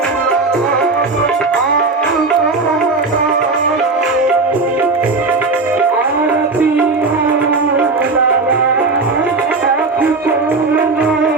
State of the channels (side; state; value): left; quieter; 3.7 dB